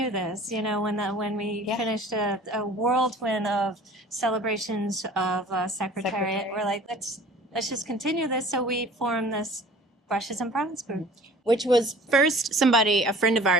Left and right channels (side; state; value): both; normal; correlation 0.47